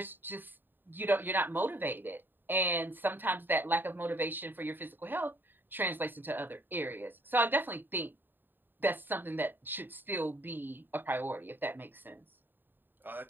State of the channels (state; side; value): late; left; 0.093 ms